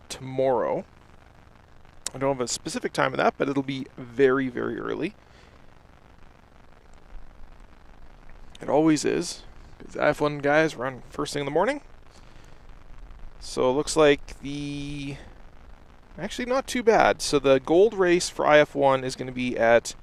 tomorrow. I don't have a specific time of that, but it'll be very, very early. It always is, because IF1 guys run first thing in the morning. So it looks like actually not too bad. So the gold race for IF1 is going to be at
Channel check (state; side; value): identical; both; correlation 1.00